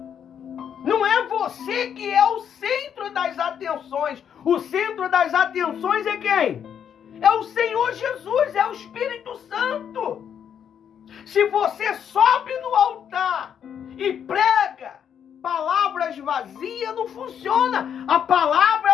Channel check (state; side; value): quieter; right; 8.4 dB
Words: Não é você que é o centro das atenções. O centro das atenções é quem? É o Senhor Jesus, é o Espírito Santo. Se você sobe no altar e prega palavras vazias, não funciona. A palavra,